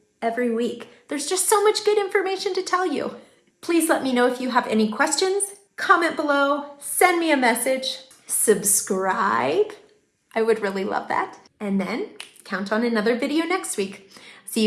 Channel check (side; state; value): both; identical; correlation 1.00